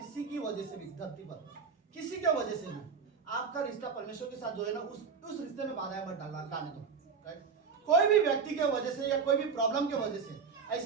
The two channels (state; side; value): quieter; left; 5.7 dB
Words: की वजह से भी धरती पर किसी के वजह से भी आपका रिश्ता परमेश्वर के साथ जो है ना उस रिश्ते में बाधाएं मत डालने दो, राइट। कोई भी व्यक्ति के वजह से या कोई भी प्रॉब्लम के वजह से